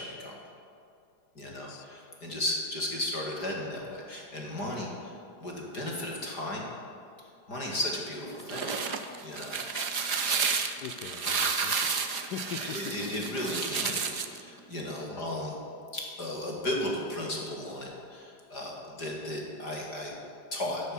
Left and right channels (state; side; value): late; right; 4.9 ms